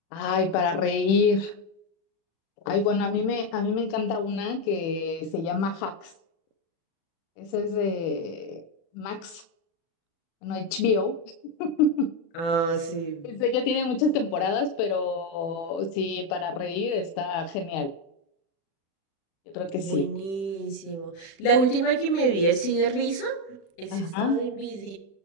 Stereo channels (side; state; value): right; late; 36 ms